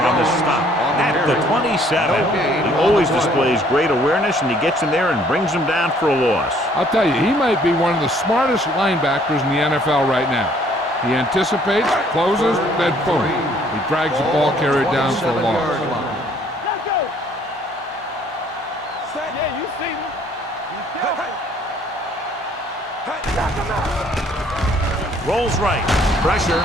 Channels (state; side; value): normal; both; correlation 0.61